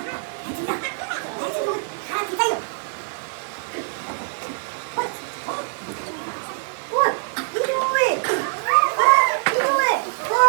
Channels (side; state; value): left; silent; digital silence